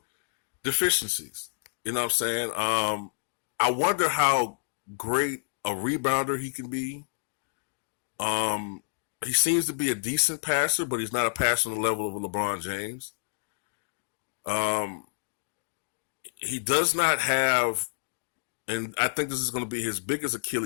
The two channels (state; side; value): silent; right; digital silence